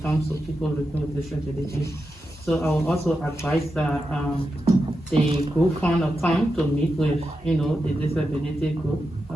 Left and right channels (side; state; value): both; normal; correlation 0.89